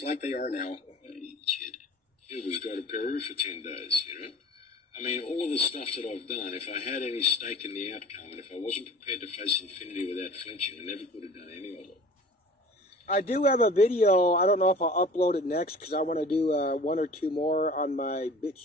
like they are now. Shit. He was go to Peru for 10 days, you know? I mean, all of the stuff that I've done, if I had any stake in the outcome, and if I wasn't prepared to face infinity without flinching, I never could have done any of it. I do have a video. I don't know if I'll upload it next because I want to do one or two more on my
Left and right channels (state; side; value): normal; both; correlation 0.42